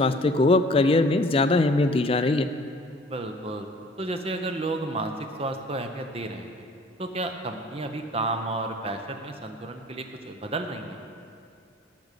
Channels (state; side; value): normal; both; correlation 0.51